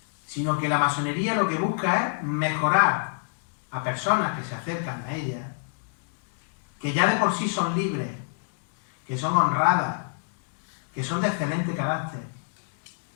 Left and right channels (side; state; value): right; silent; digital silence